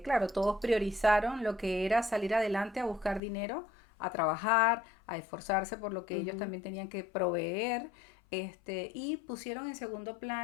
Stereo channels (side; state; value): right; drops out; at 3.2 s